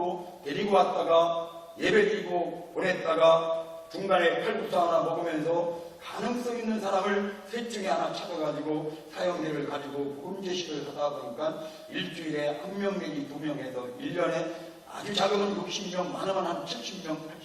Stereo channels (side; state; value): both; identical; correlation 1.00